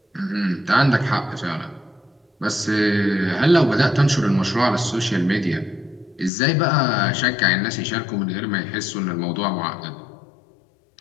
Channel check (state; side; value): drops out; right; at 6.3 s